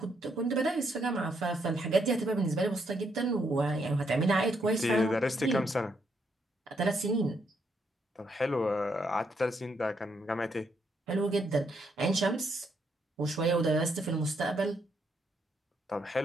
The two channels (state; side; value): normal; both; correlation 0.75